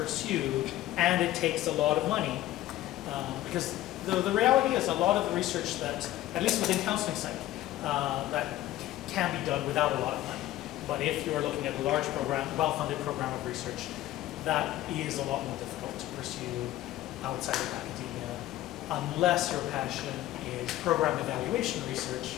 and it takes a lot of money, because the reality is a lot of the research that, at least within counseling psych, that can be done without a lot of money. But if you're looking at a large program, well-funded program of research, that is a lot more difficult to pursue outside of academia, unless your passion is program evaluation research.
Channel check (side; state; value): right; quieter; 14.8 dB